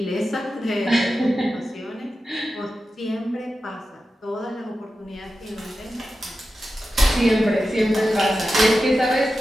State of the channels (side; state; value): both; normal; correlation 0.92